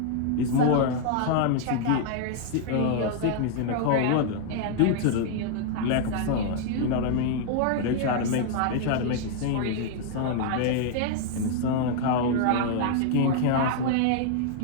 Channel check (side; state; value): both; different; correlation -0.01